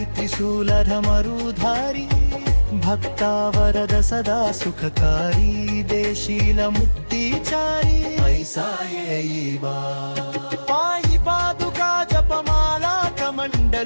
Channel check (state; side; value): inverted; both; correlation -1.00